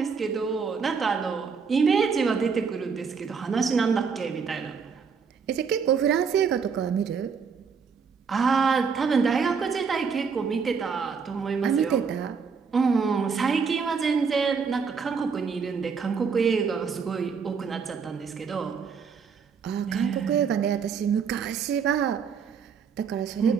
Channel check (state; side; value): quieter; left; 5.9 dB